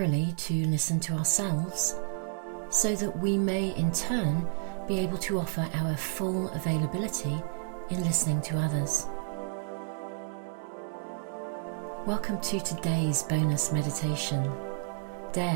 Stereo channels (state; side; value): silent; left; digital silence